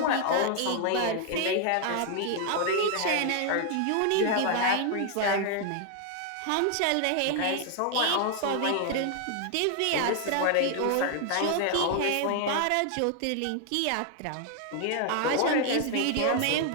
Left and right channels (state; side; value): different; both; correlation 0.00